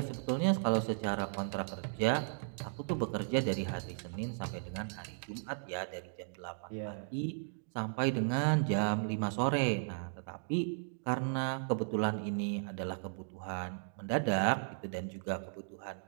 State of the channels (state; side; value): silent; left; digital silence